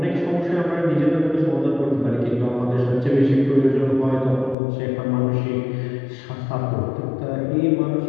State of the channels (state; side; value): drops out; right; at 4.5 s